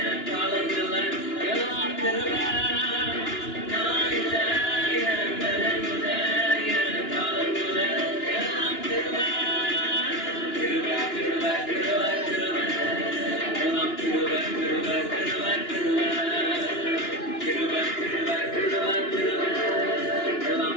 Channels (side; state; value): right; late; 2.9 ms